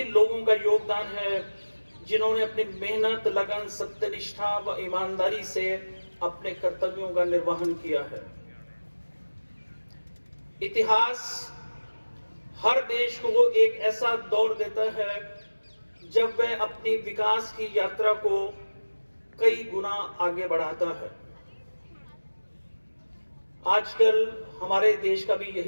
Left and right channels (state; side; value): inverted; both; correlation -1.00